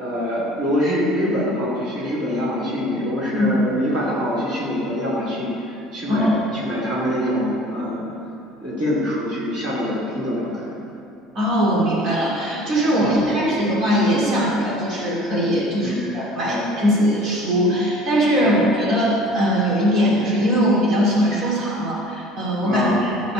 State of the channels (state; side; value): normal; both; correlation 0.47